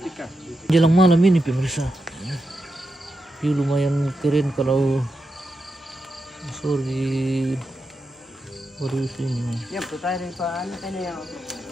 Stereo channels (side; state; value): both; normal; correlation 0.87